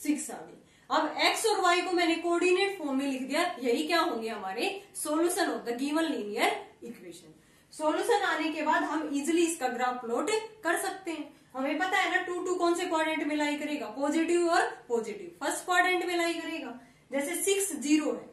आ गई। अब x और y को मैंने कोऑर्डिनेट फॉर्म में लिख दिया, यही क्या होंगे हमारे solution of the given linear equation. Solution आने के बाद हम इजिली इसका ग्राफ प्लॉट कर सकते हैं। हमें पता है ना 2 2 कौन से क्वाड्रेंट में लाई करेगा, पॉजिटिव और पॉजिटिव, फर्स्ट क्वाड्रेंट में लाई करेगा। जैसे 6 0 है,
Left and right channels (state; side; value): identical; both; correlation 1.00